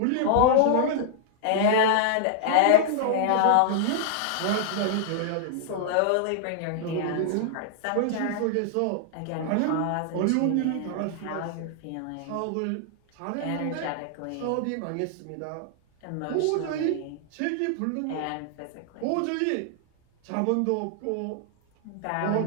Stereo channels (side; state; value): both; different; correlation -0.01